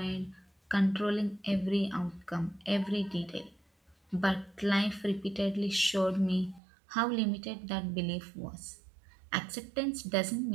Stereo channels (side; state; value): left; drops out; at 6.6 s